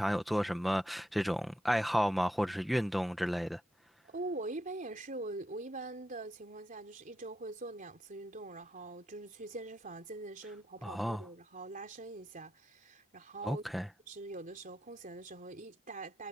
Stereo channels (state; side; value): normal; both; correlation 0.86